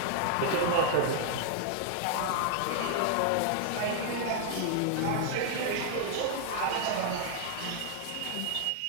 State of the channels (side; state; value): both; different; correlation -0.01